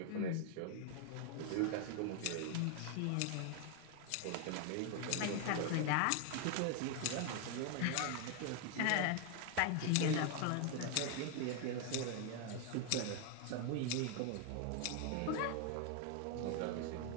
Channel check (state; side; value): different; both; correlation 0.00